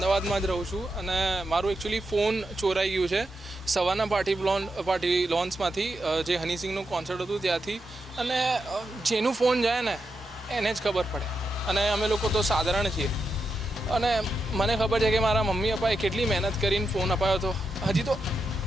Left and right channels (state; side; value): normal; both; correlation 0.86